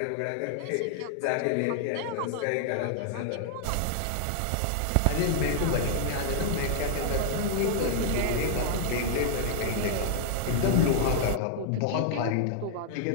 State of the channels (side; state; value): both; different; correlation 0.00